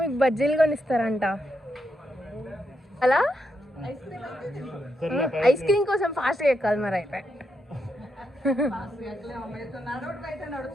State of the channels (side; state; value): both; normal; correlation 0.82